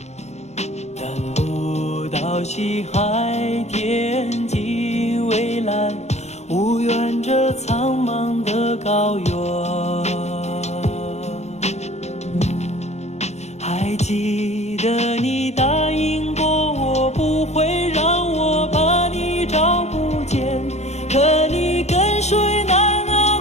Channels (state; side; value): late; right; 0.32 ms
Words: 等不到西海天际蔚蓝，无缘这苍茫的高原。还记得你答应过我，不会让我把你找不见，可你跟随那